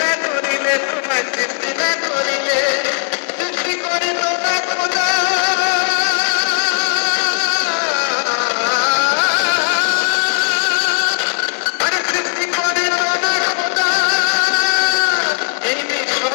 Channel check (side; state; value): right; silent; 57 dB below the other